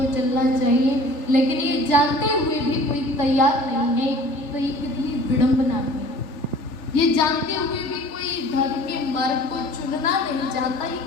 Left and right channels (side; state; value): right; late; 3.4 ms